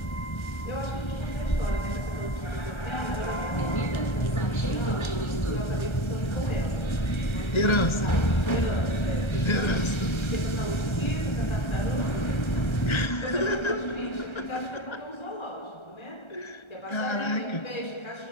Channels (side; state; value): right; late; 1.3 ms